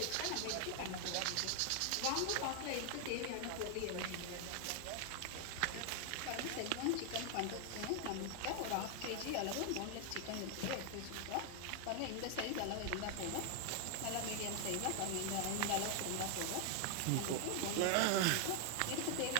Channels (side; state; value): both; different; correlation 0.00